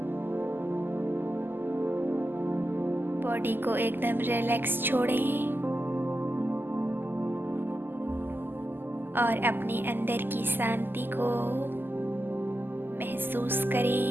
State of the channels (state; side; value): late; left; 0.094 ms